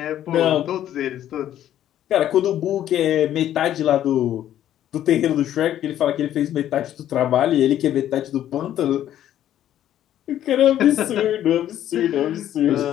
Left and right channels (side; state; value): right; quieter; 11.6 dB